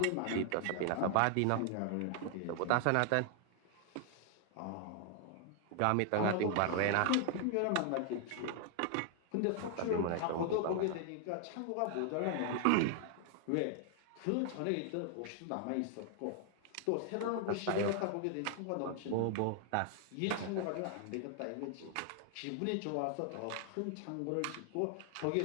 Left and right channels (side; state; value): both; different; correlation 0.00